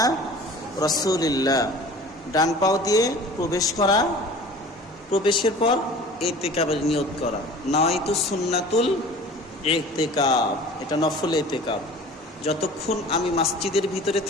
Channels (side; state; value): both; normal; correlation 0.43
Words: রাসূলিল্লাহ। ডান পাও দিয়ে প্রবেশ করা, প্রবেশের পর ইতিকাবের নিয়ত করা। নাওয়াইতু সুন্নাতুল ইতিকাব, এটা নফল ইতিকাব। যতক্ষণ আমি মসজিদের ভিতরে